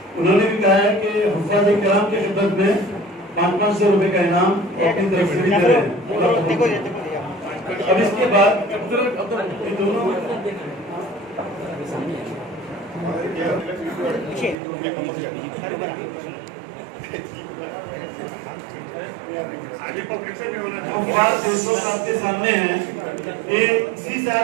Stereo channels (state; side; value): drops out; left; at 14.6 s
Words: انہوں نے بھی کہا ہے کہ حفاظ کرام کی خدمت میں 500 روپے کا انعام اپنی طرف سے بھی دے رہے ہیں۔ اب اس کے بعد یہ دونوں حفاظ دوستوں آپ کے سامنے ہیں۔ یہ اسی سال